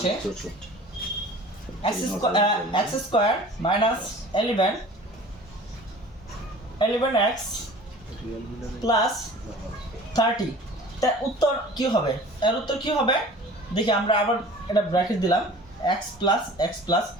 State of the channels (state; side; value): normal; both; correlation 0.44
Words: x² - 11x প্লাস 30, তার উত্তর কি হবে? এর উত্তর কি হবে দেখি। আমরা আবার এটা ব্র্যাকেট দিলাম x প্লাস,